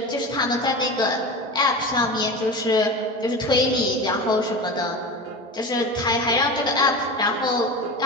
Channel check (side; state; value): both; normal; correlation 0.29